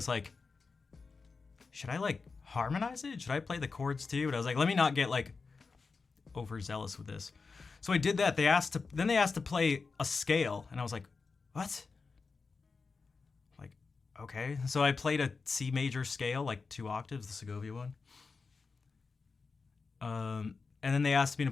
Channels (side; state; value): right; quieter; 4.6 dB